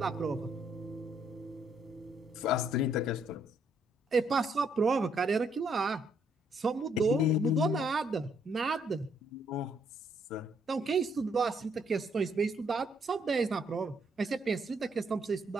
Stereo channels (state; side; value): normal; both; correlation 0.71